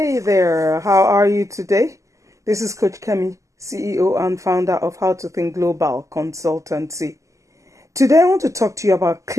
there, how are you today? This is Coach Kemi, CEO and founder of How to Think Global Consultancy. Today I want to talk to you about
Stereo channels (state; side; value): late; left; 0.16 ms